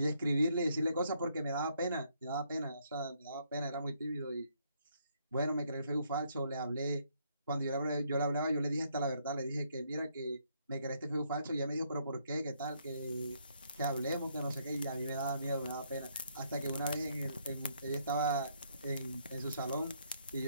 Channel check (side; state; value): both; inverted; correlation -0.71